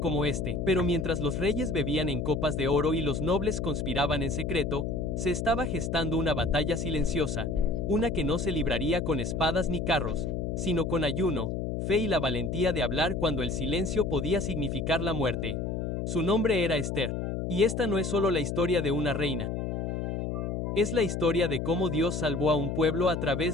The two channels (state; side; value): noise; left; hum, 2 dB below the sound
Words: este, pero mientras los reyes bebían en copas de oro y los nobles conspiraban en secreto, se estaba gestando una batalla silenciosa, una que no se libraría con espadas ni carros, sino con ayuno, fe y la valentía de hablar cuando el silencio podía significar la muerte. Su nombre era Esther. Y esta no es solo la historia de una reina. Es la historia de cómo Dios salvó a un pueblo a